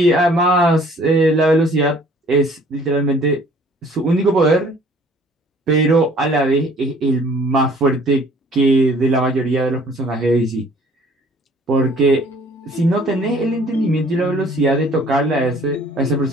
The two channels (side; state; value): both; normal; correlation 0.55